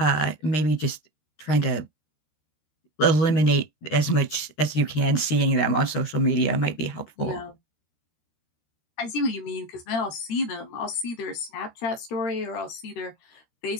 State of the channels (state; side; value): late; right; 13 ms